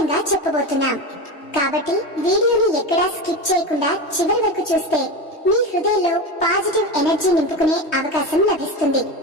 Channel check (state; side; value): late; right; 3.2 ms